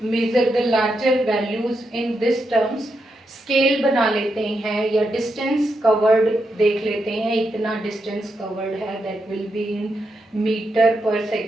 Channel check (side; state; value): both; normal; correlation 0.84